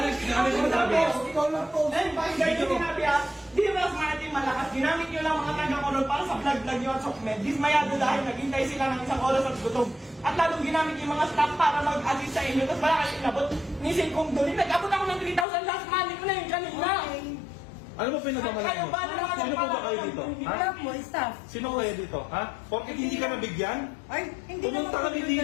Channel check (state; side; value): drops out; right; at 15.5 s